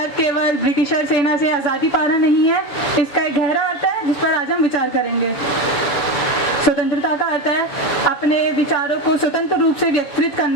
केवल ब्रिटिशर सेना से आज़ादी पाना नहीं है, इसका एक गहरा अर्थ है जिस पर आज हम विचार करेंगे। स्वतंत्रता का अर्थ है अपने विचारों को स्वतंत्र रूप से व्यक्तिगत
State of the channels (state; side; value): late; right; 6.9 ms